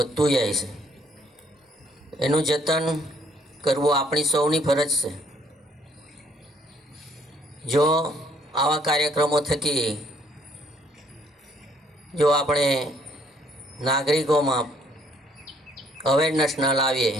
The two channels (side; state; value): both; normal; correlation 0.65